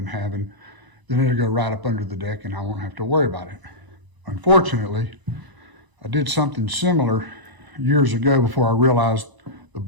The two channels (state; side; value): late; left; 1.0 ms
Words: having, then it'll go right up under the deck and I won't have to worry about it. Unfortunately, I did something similar years ago before I realized the